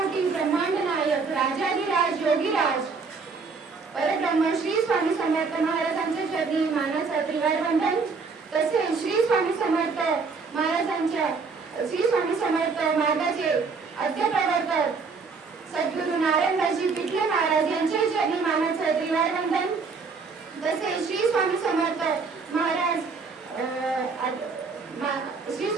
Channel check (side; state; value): left; quieter; 4.7 dB